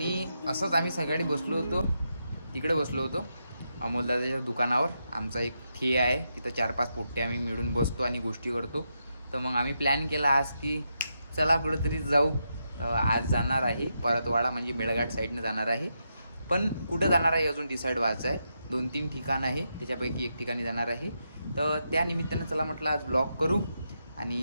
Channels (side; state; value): both; inverted; correlation -0.84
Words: असंच आम्ही सगळे तिकडे बसलो होतो अमोलदादाच्या दुकानावर. आमचा एक ठे आहे तिथं 4-5 पोट्टे आम्ही मिळून बसतो आणि गोष्टी करतो. तर मग आम्ही प्लॅन केला आज की चला कुठेतरी जाऊ. आज जाणार आहे परतवाडा म्हणजे मेळघाट साईडनं जाणार आहे, पण कुठं जाणार आहे अजून डिसाईड व्हायचं आहे. 2-3 ठिकाण आहे, त्याच्यापैकी एक ठिकाणी जाणार आहे. तर त्या निमित्तानं चला म्हटलं आज ब्लॉग करू